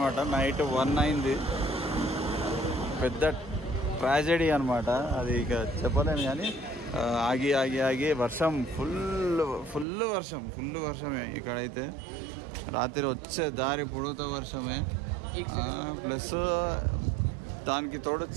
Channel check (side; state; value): left; drops out; at 9.9 s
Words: నైట్ 1 అయింది. పెద్ద ట్రాజెడీ అనమాట అది, ఇక చెప్పలేను కానీ ఆగి ఆగి ఆగి వర్షం ఫుల్ వర్షమే ఇక్కడైతే. రాత్రి వచ్చే దారి పొడుగుతా వర్షమే, ప్లస్ దానికి తోడు